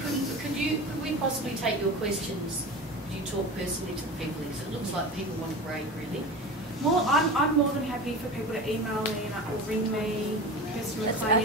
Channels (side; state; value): both; normal; correlation 0.31